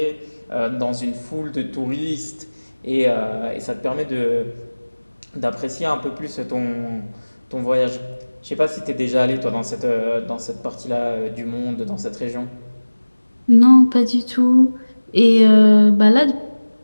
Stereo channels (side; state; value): both; inverted; correlation -1.00